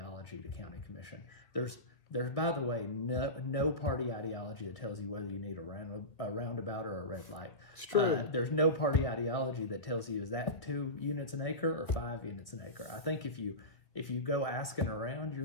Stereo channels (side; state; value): right; late; 1.9 ms